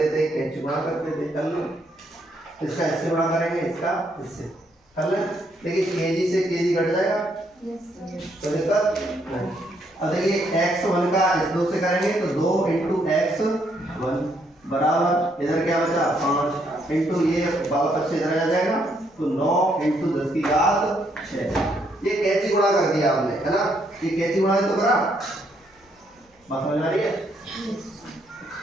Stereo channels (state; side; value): normal; both; correlation 0.73